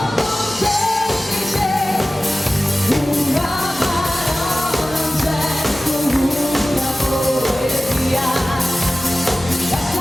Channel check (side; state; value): both; normal; correlation 0.96